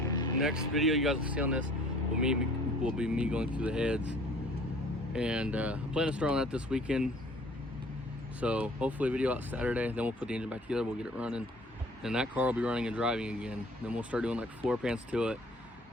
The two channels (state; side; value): normal; both; correlation 0.53